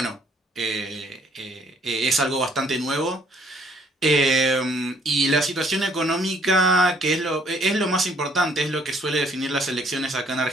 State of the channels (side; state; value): both; normal; correlation 0.63